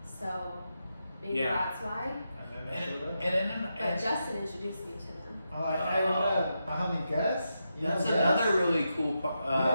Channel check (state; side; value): inverted; both; correlation -0.86